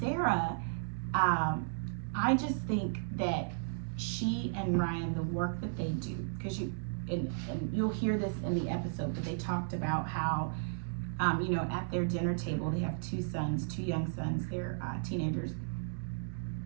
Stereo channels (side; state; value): left; silent; digital silence